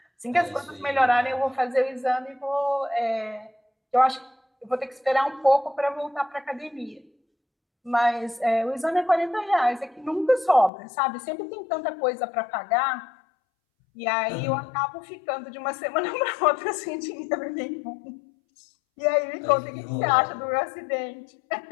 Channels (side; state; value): right; drops out; at 10.7 s